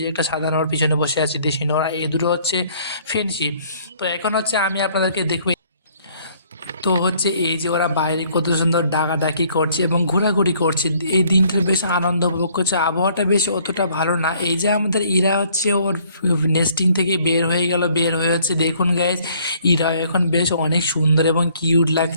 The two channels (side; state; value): both; inverted; correlation -0.61